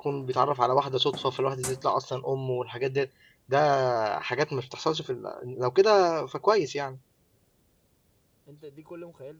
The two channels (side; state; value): both; identical; correlation 1.00